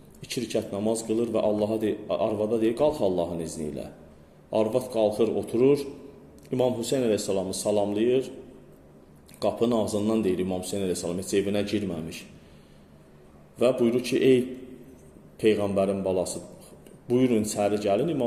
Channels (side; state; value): both; identical; correlation 1.00